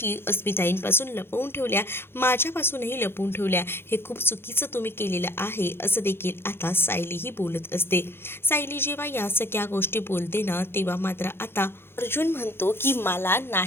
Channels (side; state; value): right; late; 0.11 ms